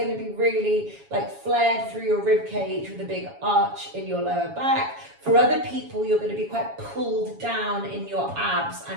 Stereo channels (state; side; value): late; left; 7.2 ms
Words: to be really like flared through your rib cage with a big arch in your lower back. For other people, you're going to be quite pulled down in your abs